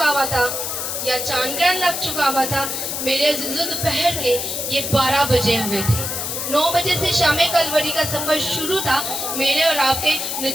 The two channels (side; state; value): left; noise; hiss, 3 dB below the sound